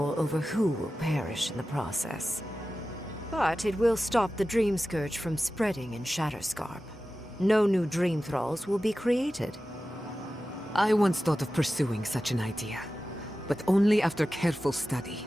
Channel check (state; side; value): normal; both; correlation 0.94